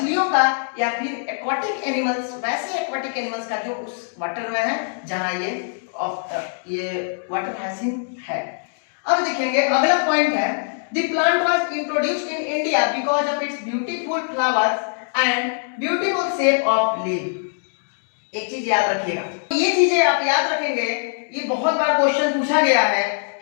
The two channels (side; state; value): right; silent; digital silence